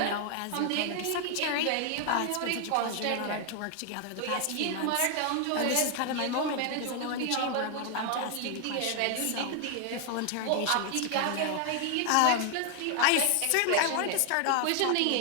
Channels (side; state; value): both; different; correlation 0.00